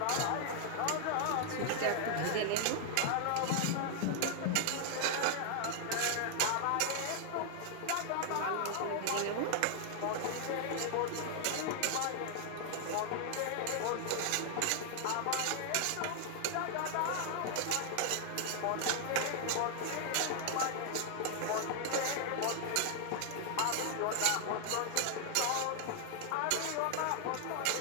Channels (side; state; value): both; different; correlation 0.00